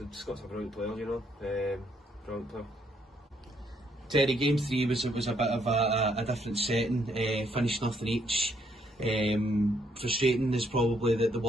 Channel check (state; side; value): normal; both; correlation 0.71